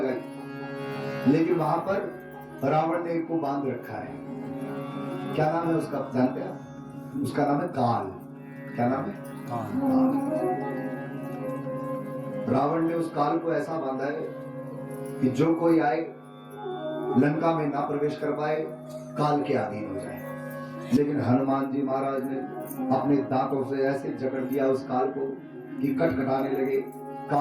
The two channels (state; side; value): identical; both; correlation 1.00